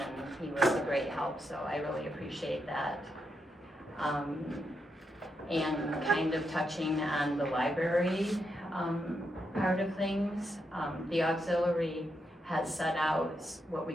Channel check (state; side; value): normal; both; correlation 0.83